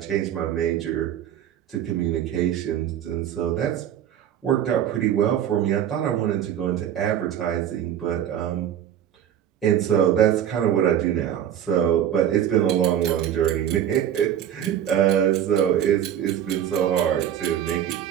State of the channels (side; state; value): left; quieter; 10.2 dB